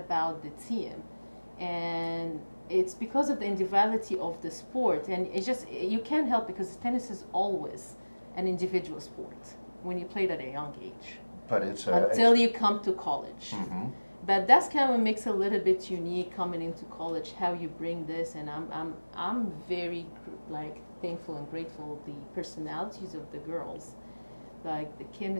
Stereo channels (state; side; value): inverted; both; correlation -1.00